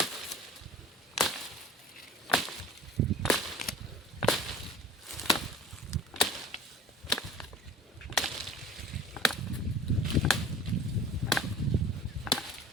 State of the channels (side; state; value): both; normal; correlation 0.43